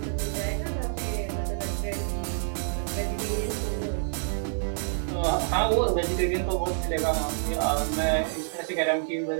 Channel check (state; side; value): silent; left; 60 dB below the other